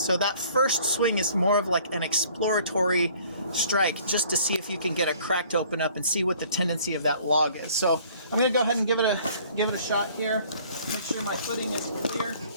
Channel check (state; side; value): inverted; both; correlation -0.55